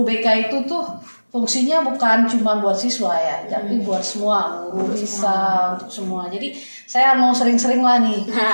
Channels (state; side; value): inverted; both; correlation -1.00